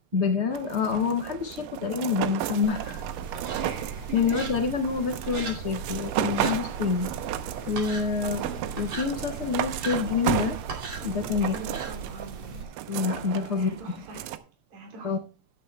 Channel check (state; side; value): late; left; 6.7 ms